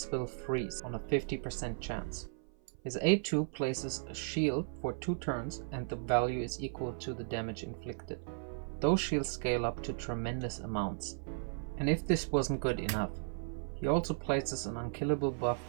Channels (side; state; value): left; silent; 54 dB below the other